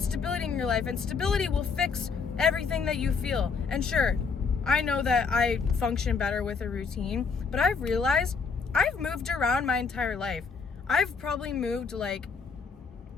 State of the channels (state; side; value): quieter; right; 5.3 dB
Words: stability in your life, and stability will fix everything that you feel. And sure, I know that I function better with a routine, but I've realized I've moved around my entire life. I've probably moved like